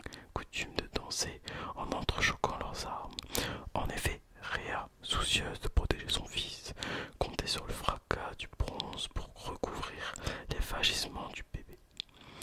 coutume de danser en entrechoquant leurs armes. En effet, Rhea, soucieuse de protéger son fils, comptait sur le fracas du bronze pour recouvrir les vagissements du bébé.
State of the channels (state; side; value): identical; both; correlation 1.00